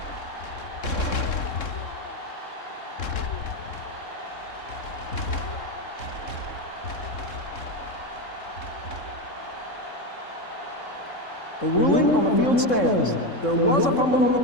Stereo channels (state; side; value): late; right; 3.6 ms